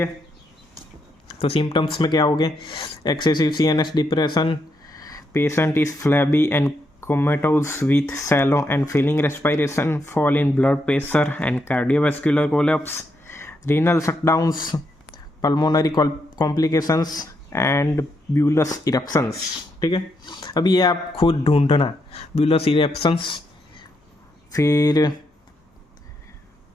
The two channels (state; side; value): normal; both; correlation 0.80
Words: तो सिम्टम्स में क्या हो गए? Excessive CNS depression, patient is flabby and comatose with shallow and failing respiration, fall in blood pressure and cardiovascular collapse, renal shutdowns, pulmonary complications and bullous eruptions, ठीक है। अब ये आप खुद ढूंढना, ब्यूलस इरप्शंस, फिर